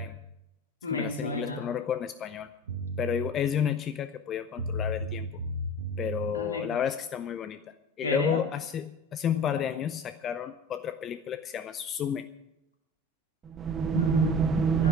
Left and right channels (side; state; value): both; normal; correlation 0.36